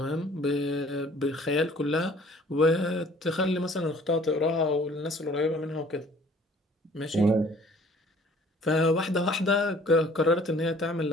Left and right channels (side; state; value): both; normal; correlation 0.54